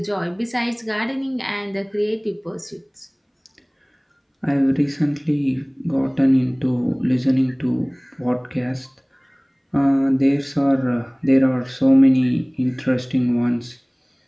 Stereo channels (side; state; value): both; identical; correlation 1.00